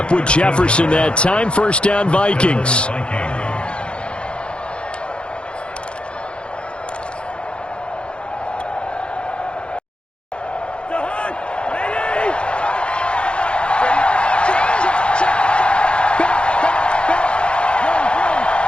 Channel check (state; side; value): late; right; 0.057 ms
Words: with Jefferson that time. First down, Vikings.